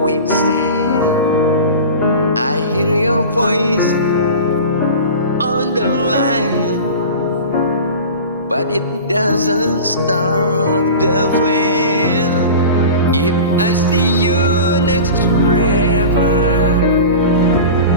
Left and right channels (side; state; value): both; inverted; correlation -0.34